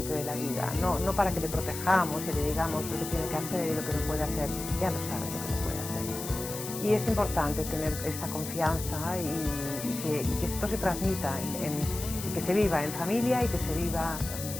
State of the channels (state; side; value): noise; left; hiss, 8 dB below the sound